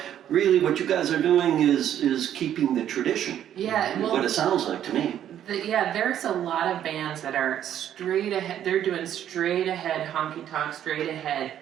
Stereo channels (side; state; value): left; quieter; 10.6 dB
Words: really what you guys are doing is keeping the tradition. What it sounds like to me. There's a lot of bands that are straight ahead. They're doing straight ahead honky tonk, straight ahead